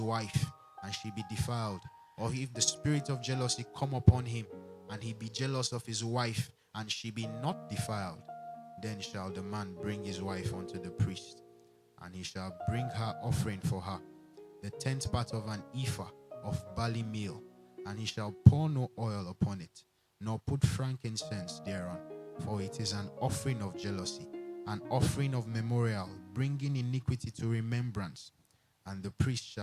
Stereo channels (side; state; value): both; identical; correlation 1.00